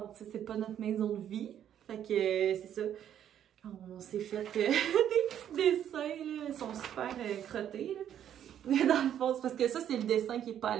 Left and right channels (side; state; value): left; quieter; 10.1 dB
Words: tu sais, c'est pas notre maison de vie. Fait que c'est ça. On s'est fait des petits dessins, là. Ils sont super crottés, là. Dans le fond, c'est parce que ça, c'est le dessin qui est pas à